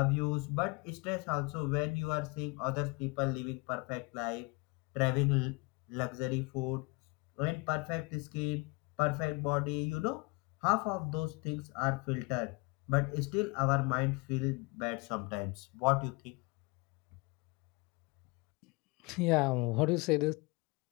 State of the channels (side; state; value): right; quieter; 27.7 dB